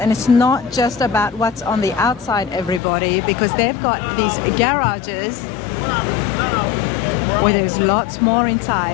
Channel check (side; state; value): right; drops out; at 2.8 s